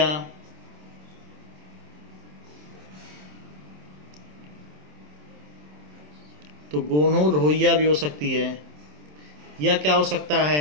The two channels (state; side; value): late; left; 27 ms